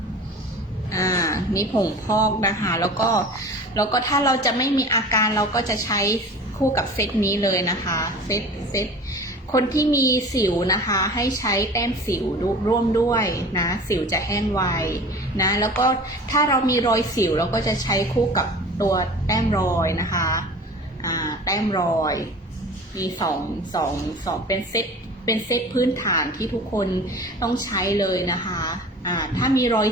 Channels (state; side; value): normal; both; correlation 0.40